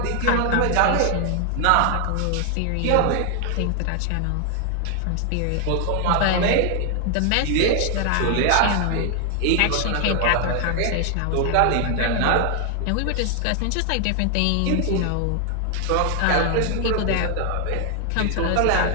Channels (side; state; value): both; different; correlation 0.00